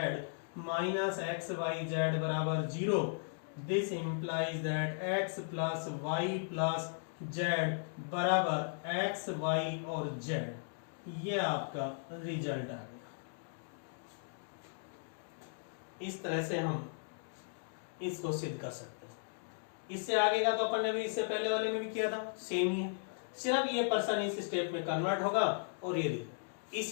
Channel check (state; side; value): silent; right; digital silence